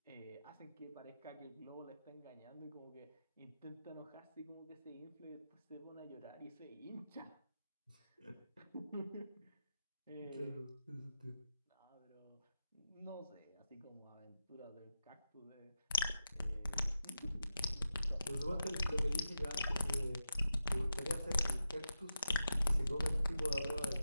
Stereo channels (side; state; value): both; inverted; correlation -0.89